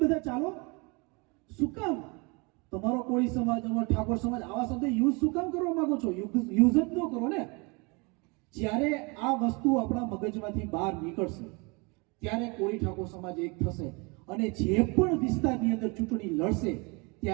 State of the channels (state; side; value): quieter; left; 29.2 dB